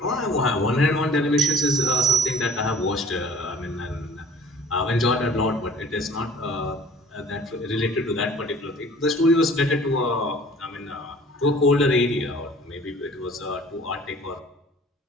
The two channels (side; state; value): both; normal; correlation 0.49